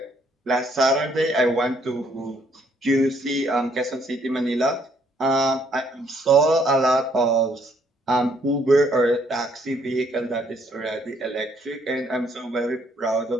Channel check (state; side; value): normal; both; correlation 0.67